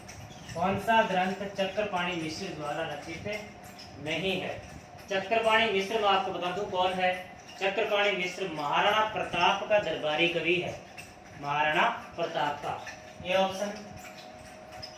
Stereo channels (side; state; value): both; identical; correlation 1.00